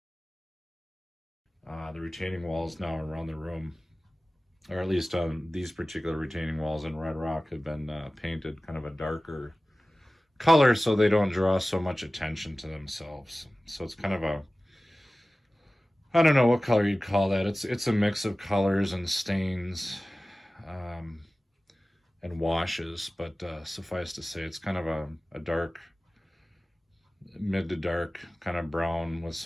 The retaining walls now around the room, or at least these particular retaining walls in Red Rock, have been painted kind of a darker color so they don't draw so much attention to themselves. So it's kind of I don't know what color you'd call that. It's a mix of colors and stains and washes, but suffice to say it's kind of a dark, mid to dark kind of brown with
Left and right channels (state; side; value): normal; both; correlation 0.97